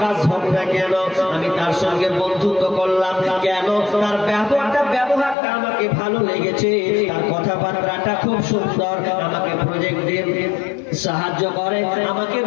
হোক না কেন, আমি তার সঙ্গে বন্ধুত্ব করলাম কেন? তার ব্যবহারটা আমাকে ভালো লেগেছে, তার কথাবার্তাটা খুব সুন্দর, আমাকে প্রজেক্ট দিয়ে সাহায্য করে, আমাকে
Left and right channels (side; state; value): right; drops out; at 5.4 s